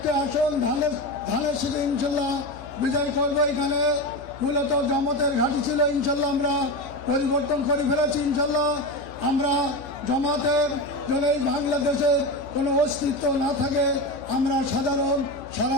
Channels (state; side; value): noise; left; hum, 18 dB below the sound